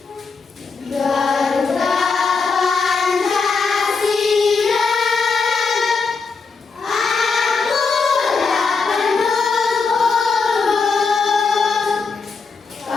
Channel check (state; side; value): quieter; right; 4.8 dB